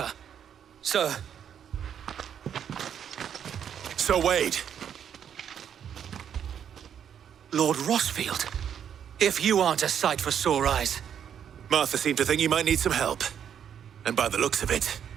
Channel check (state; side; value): quieter; left; 8.7 dB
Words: Sir. Sir Wade! Lord Rosfield. If you aren't a sight for sore eyes. Martha seemed to think you might need some help. And by the looks of it...